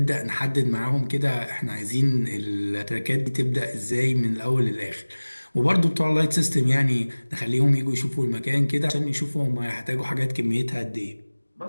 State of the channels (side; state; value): both; inverted; correlation -1.00